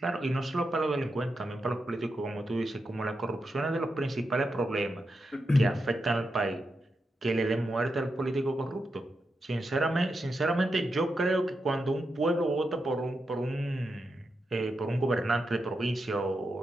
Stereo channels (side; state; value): both; normal; correlation 0.86